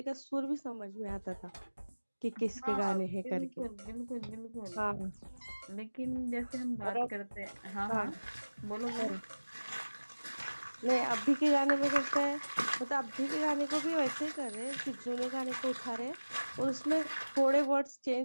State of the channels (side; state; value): both; inverted; correlation -1.00